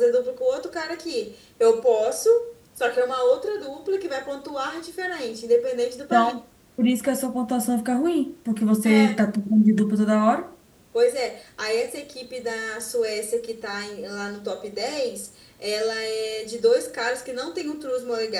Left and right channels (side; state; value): both; identical; correlation 1.00